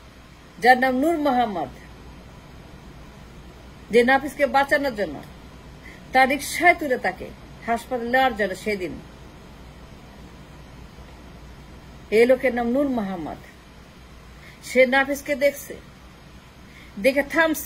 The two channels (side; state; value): both; identical; correlation 1.00